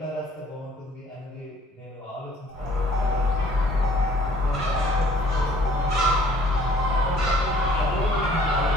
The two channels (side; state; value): both; normal; correlation 0.58